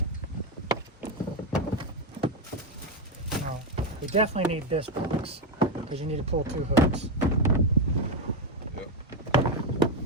No, you definitely need this box because you need to pull two hooks. Yep.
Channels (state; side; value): normal; both; correlation 0.08